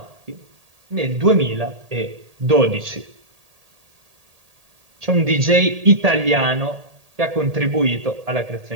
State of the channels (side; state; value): left; late; 1.8 ms